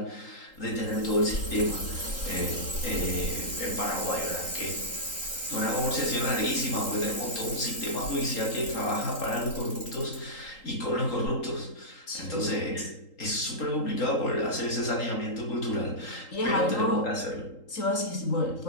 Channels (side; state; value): right; late; 3.8 ms